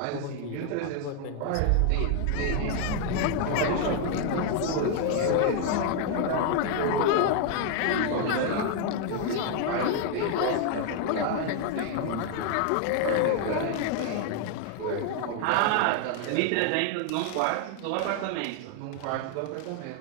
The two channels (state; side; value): different; both; correlation 0.00